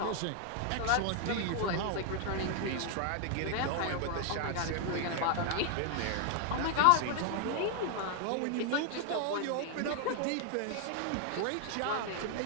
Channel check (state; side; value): different; both; correlation 0.00